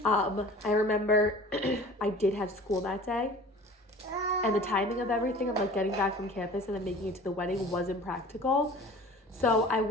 I remember I did have school that day. And the timing of everything of like getting back from campus and then making it to the wedding wasn't practical. So I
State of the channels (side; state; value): both; normal; correlation 0.43